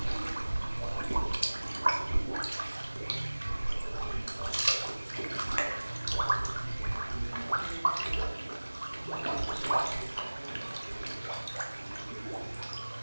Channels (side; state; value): both; inverted; correlation -1.00